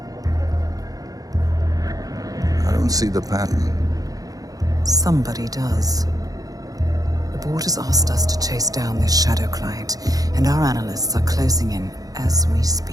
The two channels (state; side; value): late; left; 0.17 ms